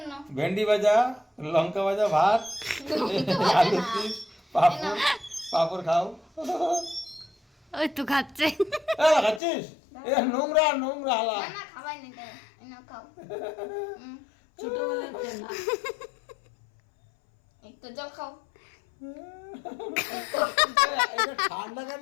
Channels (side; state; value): right; drops out; at 9.4 s